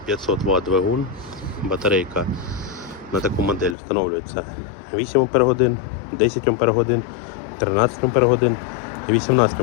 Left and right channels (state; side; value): drops out; right; at 3.8 s